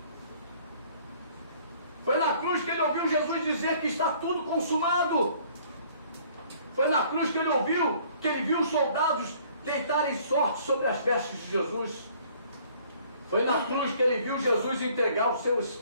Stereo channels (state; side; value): inverted; both; correlation -0.57